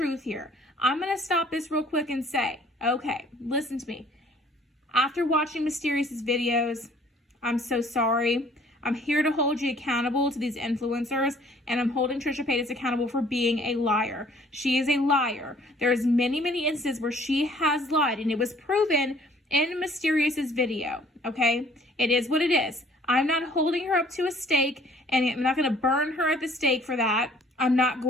here. I'm going to stop this real quick and say, okay, listen to me. After watching Mysterious's videos, I'm so sorry. I'm here to hold you accountable to these influencers, and I'm holding Trishas Paytas accountable for being a liar. She is a liar. There's many, many instances where she has lied, and it was proven in Mysterious's video, okay? It is what it is. I'm not holding her up to a stake, and I'm not going to burn her at the stake for that. I'm not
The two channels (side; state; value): both; normal; correlation 0.57